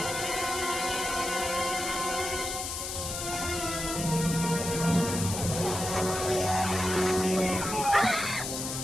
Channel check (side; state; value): left; noise; hiss, 5 dB below the sound